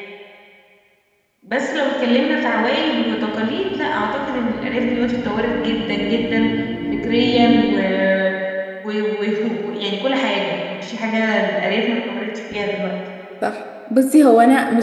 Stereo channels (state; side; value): identical; both; correlation 1.00